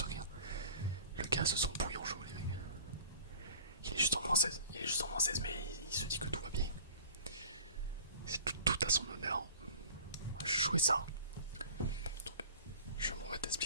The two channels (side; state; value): both; inverted; correlation -0.44